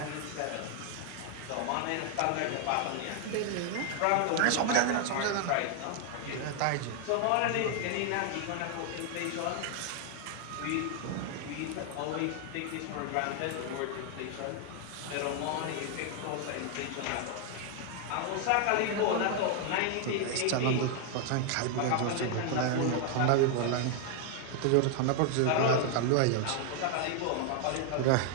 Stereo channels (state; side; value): different; both; correlation 0.00